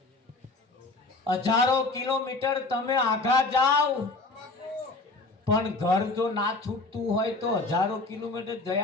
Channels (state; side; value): quieter; right; 3.3 dB